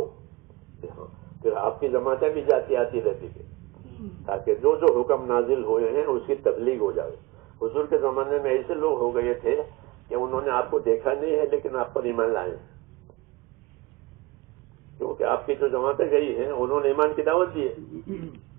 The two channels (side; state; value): left; quieter; 21.3 dB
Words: پھر آپ کی جماعتیں بھی جاتی آتی رہتی تھی. تاکہ جو جو حکم نازل ہوئے ہیں اس کی تبلیغ ہو جائے. حضور کے زمانے میں ایسے لوگ ہو گئے تھے کہ انہوں نے آپ کو دیکھا نہیں ہے لیکن آپ پر ایمان لائے ہیں، کیونکہ آپ کی جو جماعتیں گئی ہیں انہوں نے ایمان کی دعوت دی ہے،